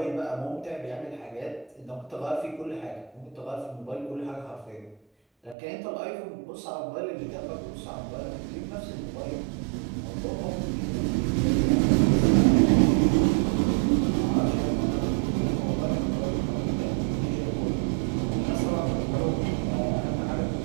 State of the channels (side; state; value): left; drops out; at 5.6 s